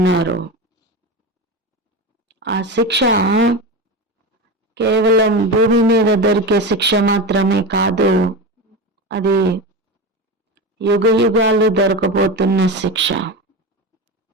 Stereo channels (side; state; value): both; normal; correlation 0.22